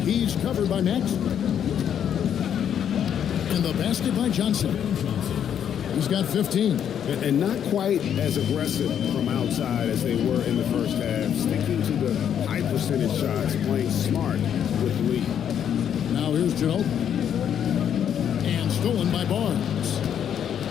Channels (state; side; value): quieter; right; 9.0 dB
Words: He's covered by Max. And the basket by Johnson. He's got 15. And not quite as aggressive from outside as they were in the first half. Sticking to the high percentage shots, playing smart with the lead. Now here's Ginobili. And stolen by Barnes.